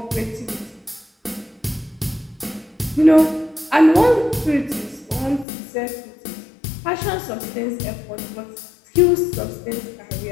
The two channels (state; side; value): drops out; right; at 5.5 s